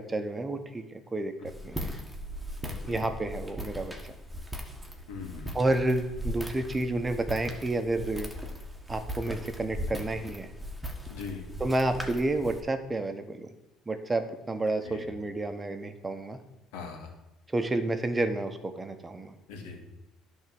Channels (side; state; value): both; normal; correlation 0.84